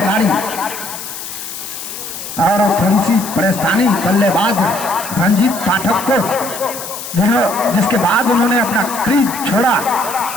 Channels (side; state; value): left; noise; hiss, 9 dB below the sound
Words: और थोड़ी सी परेशानी बल्लेबाज रंजीत पाठक को, जिसके बाद उन्होंने अपना क्रीज छोड़ा।